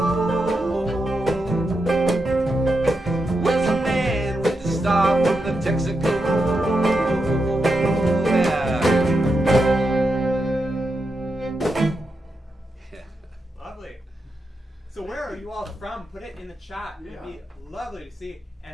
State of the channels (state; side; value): normal; both; correlation 0.86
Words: Where's the man with the star from the Texaco? Yeah. Lovely. So where are you all from? Put it in the chat. It'd be lovely to see.